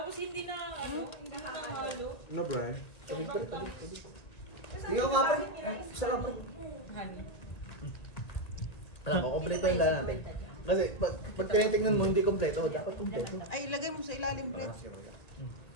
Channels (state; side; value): late; right; 1.9 ms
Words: hindi na, hindi na nahalo. No, Brian. Ikaw nga pre. Isa lang pre. Honey. Alam mo, kompleto yung lahat natin. Kasi pag tinitingnan mo hindi kompleto, dapat kompleto. Ay, ilagay mo sa ilalim, Brett.